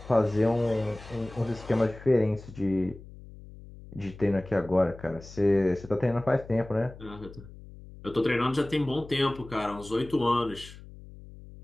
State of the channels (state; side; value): noise; left; hum, 17 dB below the sound